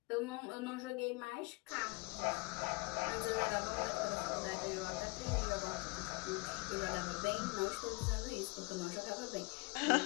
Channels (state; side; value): quieter; right; 26.6 dB